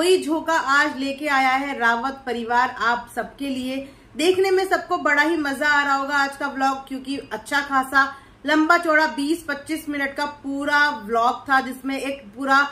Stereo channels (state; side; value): identical; both; correlation 1.00